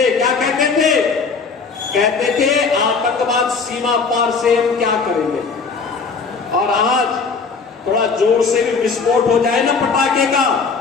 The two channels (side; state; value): right; quieter; 4.9 dB